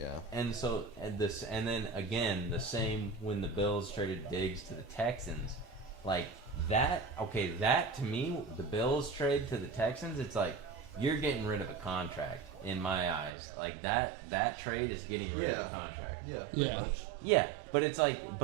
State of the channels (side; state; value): left; drops out; at 13.3 s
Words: And so, and then again, the same when the Bills traded Diggs to the Texans, like that. Okay, that to me, the Bills trade to the Texans, it's like you're getting rid of a contract in my eyes. Like that trade is getting rid of a contract. Yeah. Yeah. Pretty much. Yeah, but it's like,